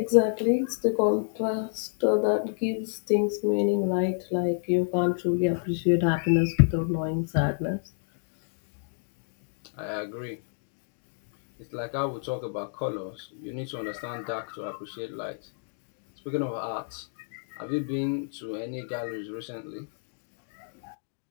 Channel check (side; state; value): right; silent; digital silence